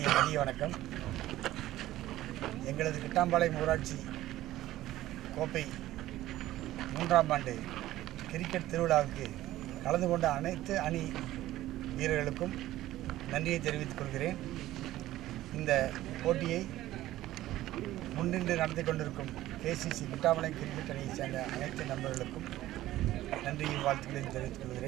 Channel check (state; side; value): quieter; left; 15.0 dB